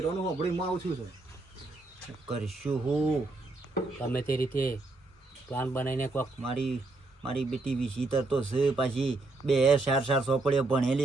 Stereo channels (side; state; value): left; quieter; 3.2 dB